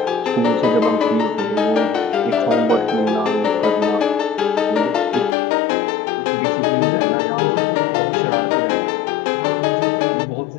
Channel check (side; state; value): right; drops out; at 5.4 s